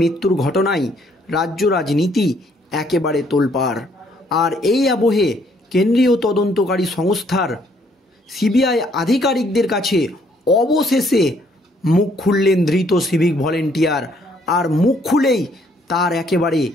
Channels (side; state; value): both; normal; correlation 0.66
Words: ঘটনায় রাজ্য রাজনীতি একেবারে তোলপাড়। আর এই আবহে কেন্দ্রীয় তদন্তকারী সংস্থার সিবিআই আধিকারিকদের কাছে অবশেষে মুখ খুললেন ধৃত সিভিক ভলেন্টিয়ার। আর মুখ খুলেই তার একেবারে